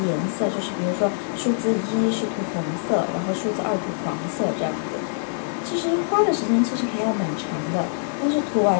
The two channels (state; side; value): silent; right; digital silence